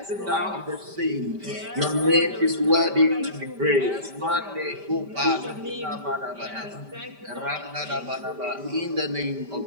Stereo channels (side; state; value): left; late; 5.1 ms